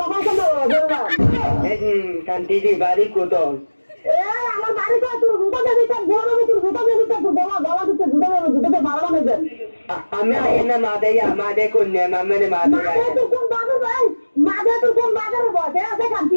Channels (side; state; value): both; inverted; correlation -1.00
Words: শান্তিদের বাড়ি কোথাও? আমার বাড়িতে তোর জুতা দেবি, তোর গোলাম তোর জুতা দেবি, তোর গলা গলা দিতে জুতা দেবে, জুতাতে মারা নেবে। আমি আয় না মা দেয়া, মা দে কন্যা মামে মা মাঝে দেয়া। তুই কোন বাজার ভাই, মাঝে তুই কোন বাজারে বসে আছে কান্তি